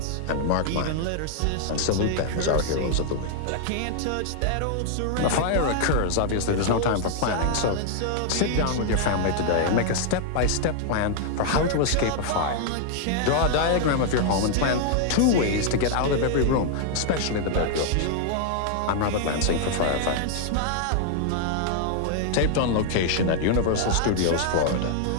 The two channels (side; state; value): both; different; correlation 0.00